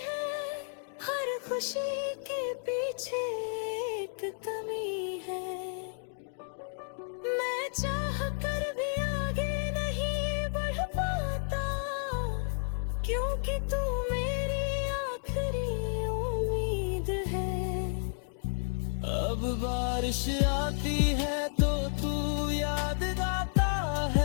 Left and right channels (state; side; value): silent; right; 57 dB below the other